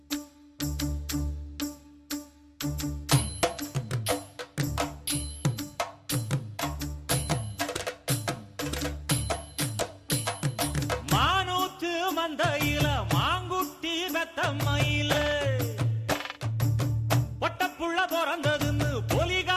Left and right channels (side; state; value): both; identical; correlation 1.00